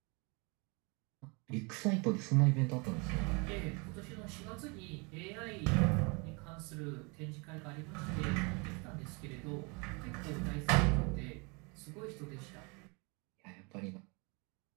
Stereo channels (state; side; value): quieter; left; 30.8 dB